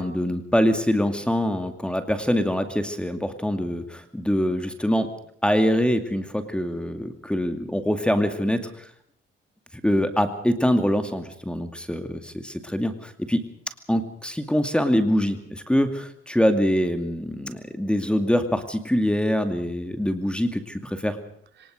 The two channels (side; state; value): both; normal; correlation 0.92